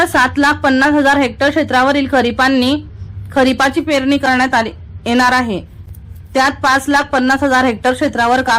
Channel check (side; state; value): both; identical; correlation 1.00